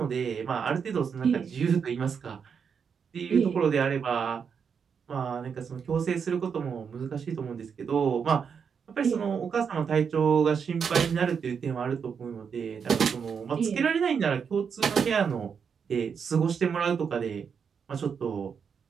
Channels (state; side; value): quieter; left; 6.6 dB